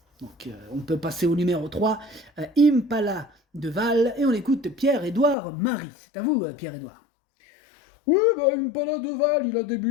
Donc, on peut passer au numéro 3, Impala de Val, et on écoute Pierre-Édouard Marie. C'est à vous, Pierre-Édouard. Oui, Impala de Val, il a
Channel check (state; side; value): drops out; right; at 5.4 s